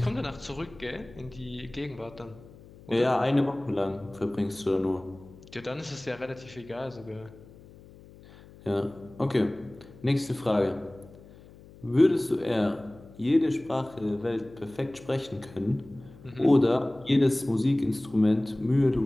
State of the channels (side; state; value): left; noise; hum, 21 dB below the sound